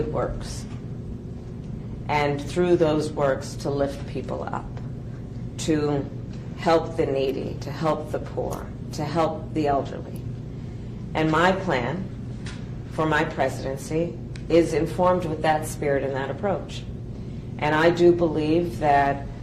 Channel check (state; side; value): identical; both; correlation 1.00